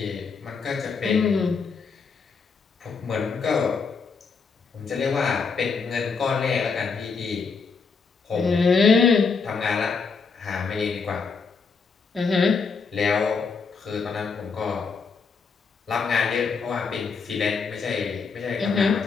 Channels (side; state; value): right; quieter; 5.1 dB